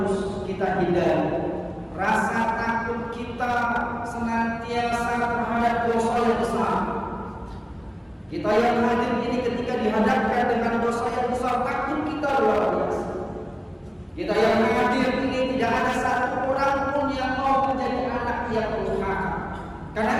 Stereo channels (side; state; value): both; identical; correlation 1.00